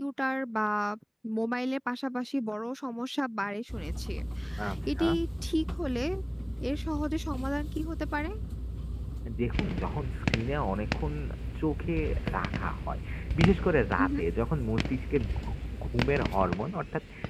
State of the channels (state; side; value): identical; both; correlation 1.00